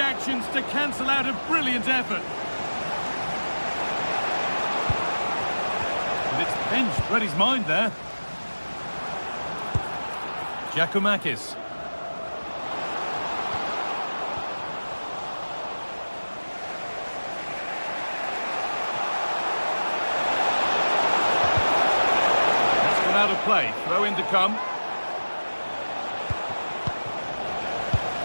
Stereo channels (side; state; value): both; inverted; correlation -1.00